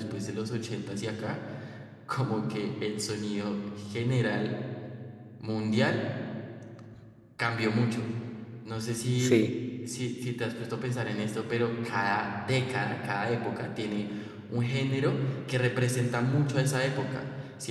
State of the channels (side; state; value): both; identical; correlation 1.00